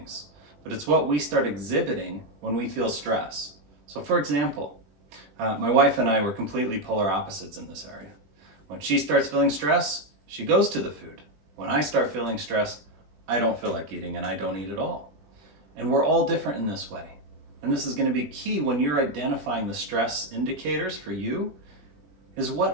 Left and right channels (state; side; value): late; left; 20 ms